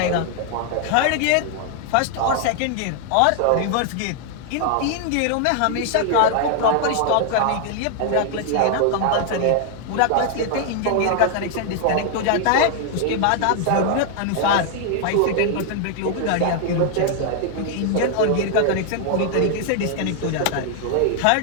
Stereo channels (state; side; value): different; both; correlation 0.00